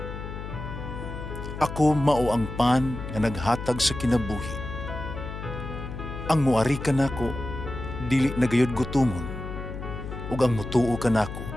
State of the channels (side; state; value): left; noise; hum, 8 dB below the sound